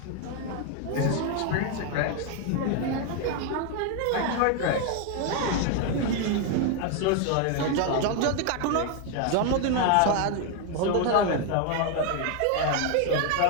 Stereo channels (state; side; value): different; both; correlation 0.01